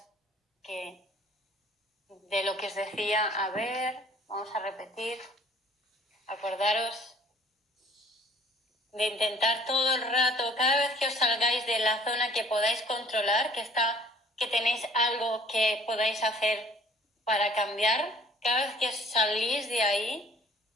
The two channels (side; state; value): both; normal; correlation 0.55